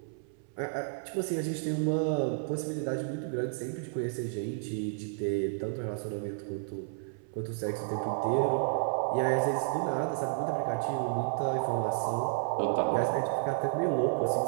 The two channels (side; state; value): left; silent; 57 dB below the other